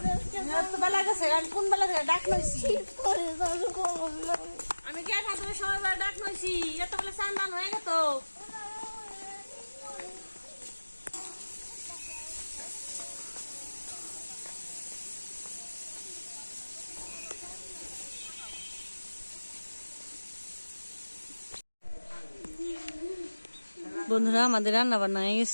তো বেলা গেছে, আমি কোন বেলা থেকে ডাক লইছি। শীত করে আমি কে থাকবে সময় বেলা ডাক লইছি, এত বেলা স্নান দান হয়ে গেত। বন্ধুরা আমাদের রান্না বান্না হয়ে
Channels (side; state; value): both; inverted; correlation -1.00